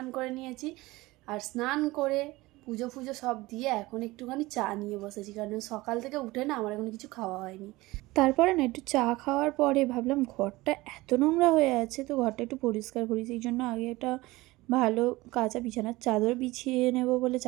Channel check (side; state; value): left; quieter; 20.1 dB